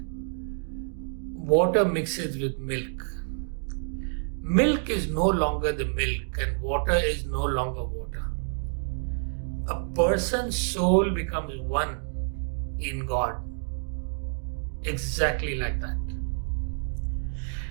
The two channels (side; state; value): left; silent; digital silence